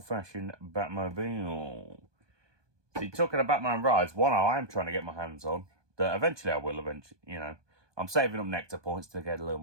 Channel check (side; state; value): left; late; 1.2 ms